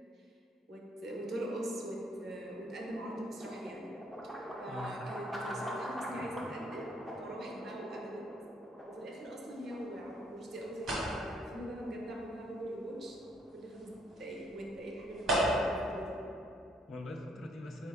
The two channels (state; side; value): normal; both; correlation 0.67